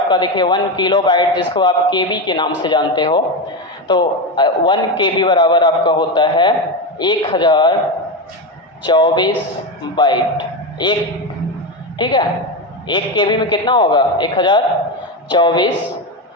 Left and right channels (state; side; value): normal; both; correlation 0.15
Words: देखिए 1 किलो बाइट, जिसको आप केबी के नाम से जानते हो। तो 1 केबी बराबर आपका होता है 1024 बाइट एक। ठीक है, 1 केबी में कितना होगा, 1024